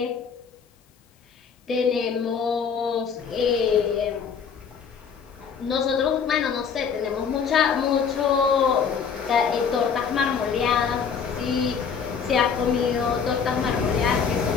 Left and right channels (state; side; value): quieter; right; 6.5 dB